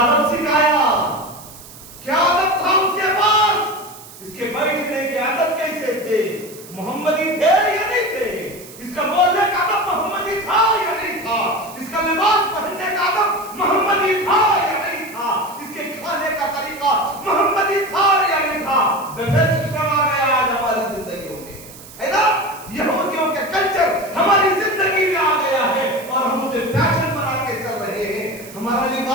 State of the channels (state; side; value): noise; right; hiss, 18 dB below the sound